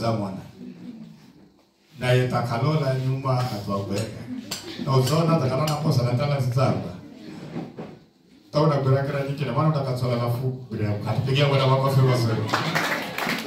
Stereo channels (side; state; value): both; identical; correlation 1.00